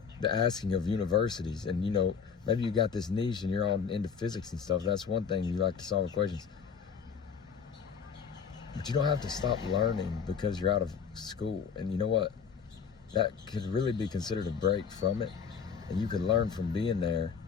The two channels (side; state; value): right; quieter; 6.5 dB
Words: the asking of universities. And maybe you got this niche and you're all into physics and stuff. That's one thing, you like to solve equations. But you don't have to stop learning because you're out of school. And you know what? That could really be considered a break from it. And you could learn from being there